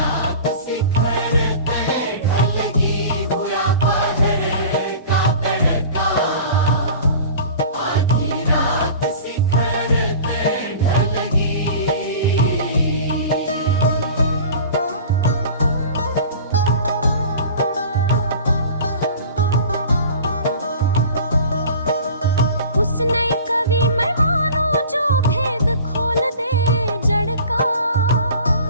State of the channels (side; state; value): both; inverted; correlation -0.40